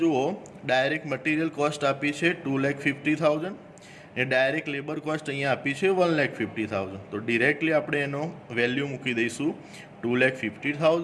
જુઓ, ડાયરેક્ટ મટીરિયલ કોસ્ટ આપી છે 2,50,000 ને ડાયરેક્ટ લેબર કોસ્ટ અહીંયા આપી છે 1,50,000. તો ડિરેક્ટલી આપણે એનો વેલ્યુ મૂકી દઈશું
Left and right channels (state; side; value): identical; both; correlation 1.00